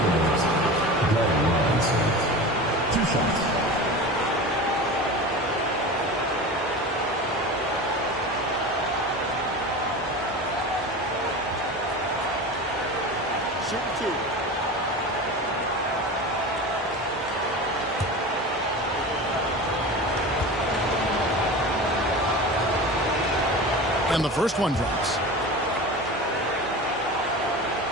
Glenn Robinson. 2 shots. Shoot 2. And the first one drops.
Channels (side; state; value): both; normal; correlation 0.31